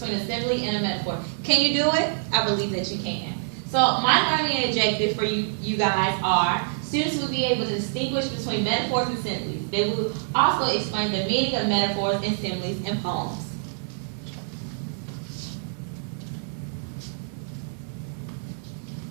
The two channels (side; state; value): left; silent; digital silence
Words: a simile and a metaphor. Can you do it? I believe that you can. So my learning objective for you guys are students will be able to distinguish between metaphors and similes. They will also explain the meaning of metaphors and similes in poems.